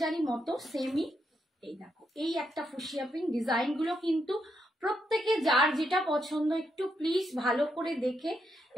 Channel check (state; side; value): normal; both; correlation 0.80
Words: মতো সেমই। এই দেখো, এই একটা ফুশিয়া পিঙ্ক। ডিজাইনগুলো কিন্তু প্রত্যেকে যার যেটা পছন্দ একটু প্লিজ ভালো করে দেখে